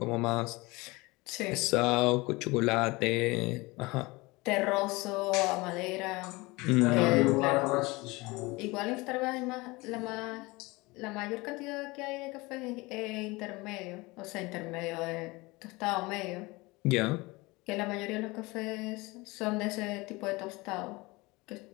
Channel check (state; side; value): quieter; right; 23.3 dB